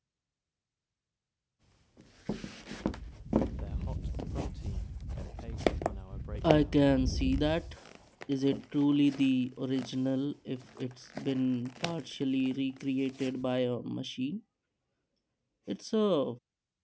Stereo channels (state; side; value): identical; both; correlation 1.00